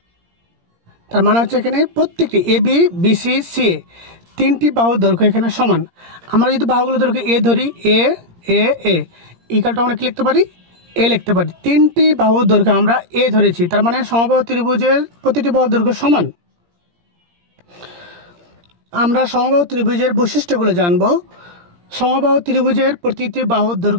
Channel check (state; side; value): late; left; 17 ms